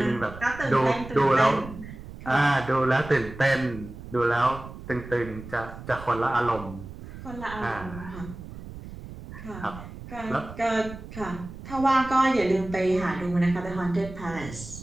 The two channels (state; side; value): noise; right; rumble, 13 dB below the sound